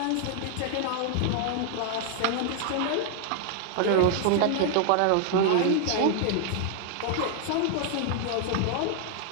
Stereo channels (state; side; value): different; both; correlation 0.00